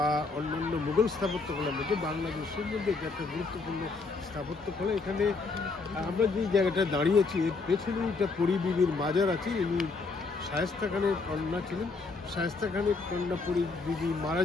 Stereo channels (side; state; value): right; quieter; 4.1 dB